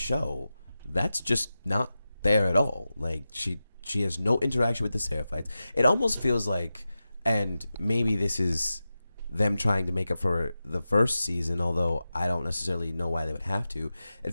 that's just not there at all. Like she has no interaction with the Seraphites. It almost feels like, and maybe this is them trying to make up for the first season, although I don't necessarily know why they would have to.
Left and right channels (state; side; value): inverted; both; correlation -0.93